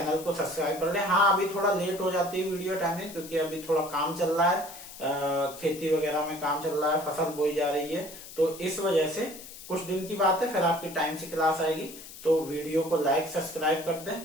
को सब्सक्राइब कर लें। हाँ, अभी थोड़ा लेट हो जाती है वीडियो टाइमिंग, क्योंकि अभी थोड़ा काम चल रहा है, खेती वगैरह में काम चल रहा है, फसल बोई जा रही है, तो इस वजह से कुछ दिन की बात है, फिर आपकी टाइम से क्लास आएगी। तो वीडियो को लाइक सब्सक्राइब कर दें,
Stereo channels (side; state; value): left; noise; hiss, 15 dB below the sound